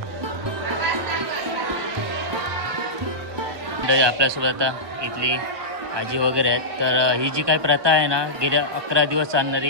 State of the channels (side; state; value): left; late; 1.2 ms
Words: मंडळी आपल्यासोबत आता इथली आजी वगैरे आहेत. तर ही जी काही प्रथा आहे ना, गेल्या 11 दिवस